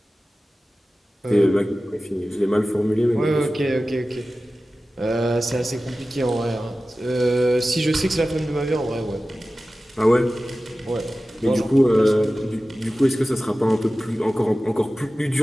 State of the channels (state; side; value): normal; both; correlation 0.95